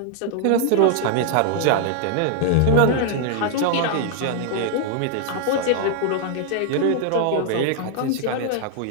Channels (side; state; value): both; different; correlation -0.01